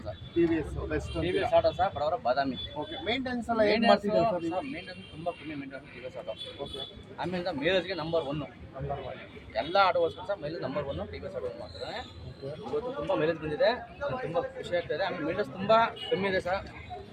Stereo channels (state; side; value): identical; both; correlation 1.00